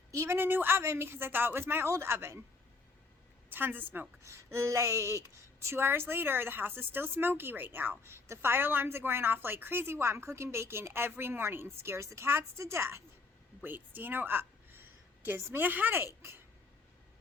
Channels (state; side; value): quieter; right; 4.1 dB